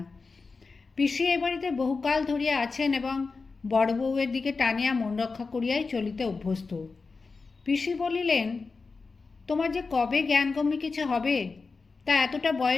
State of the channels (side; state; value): right; quieter; 4.3 dB